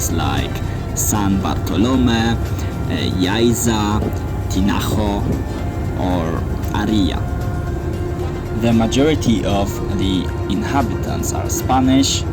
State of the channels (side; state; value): both; identical; correlation 1.00